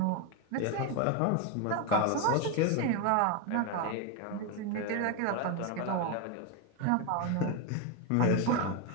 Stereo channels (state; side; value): different; both; correlation 0.02